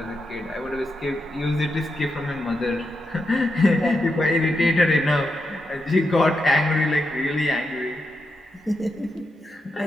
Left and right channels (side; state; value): both; normal; correlation 0.85